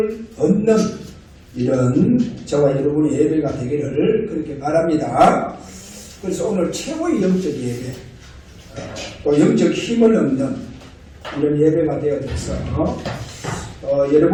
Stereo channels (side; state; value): both; identical; correlation 1.00